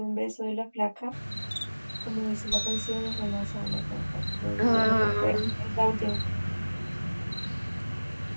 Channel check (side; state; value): both; inverted; correlation -1.00